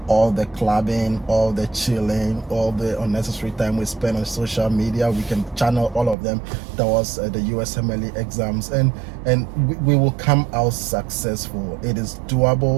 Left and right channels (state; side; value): drops out; left; at 6.2 s